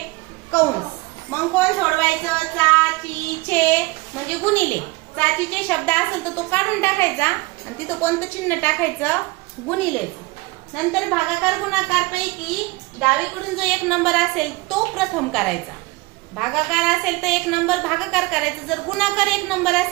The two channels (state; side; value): quieter; left; 23.1 dB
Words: कंस. मग कोण सोडवायचं? चा, ची, छे म्हणजे गुणिले. चाचीचे शब्द असेल तर तो काढून टाकायचा आणि तिथं कोणतं चिन्ह टाकायचं? गुणिलेचं. नंतर भागाकार गुणाकार पैकी डावीकडून जो एक नंबर असेल तो प्रथम करायचा. भागाकार असेल तर एक नंबर भागाकार करायचा. जर गुणाकार एक नंबर